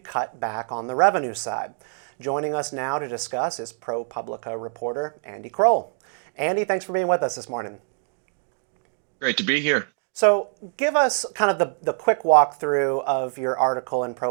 back on the revenue side? Joining us now to discuss is ProPublica reporter Andy Kroll. Andy, thanks for being with us this morning. Great to be here. So give us kind of the quick walkthrough of your article in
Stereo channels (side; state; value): left; silent; 62 dB below the other